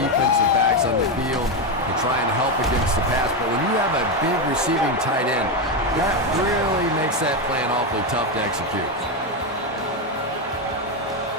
backs on the field to try and help against the pass. But when you have a big receiving tight end, that really makes that plan awfully tough to execute.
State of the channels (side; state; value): both; normal; correlation 0.09